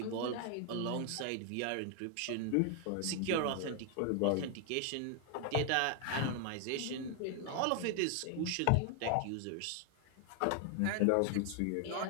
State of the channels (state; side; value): different; both; correlation 0.00